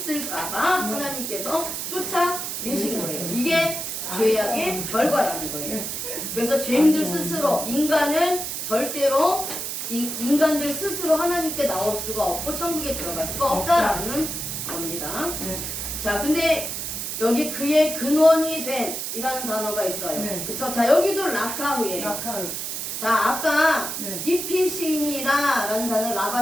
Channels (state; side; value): noise; right; hiss, 4 dB below the sound